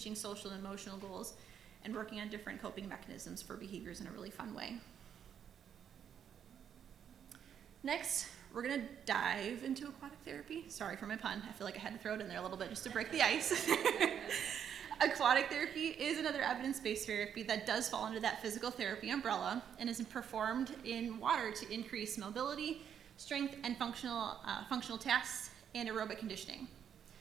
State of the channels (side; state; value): left; quieter; 8.5 dB